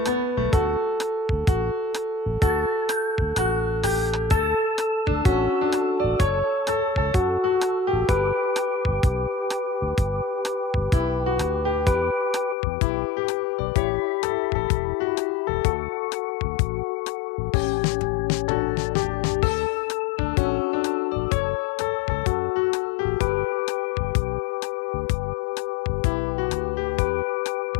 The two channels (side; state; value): right; drops out; at 12.6 s